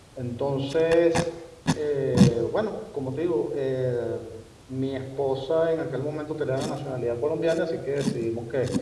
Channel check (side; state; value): both; identical; correlation 1.00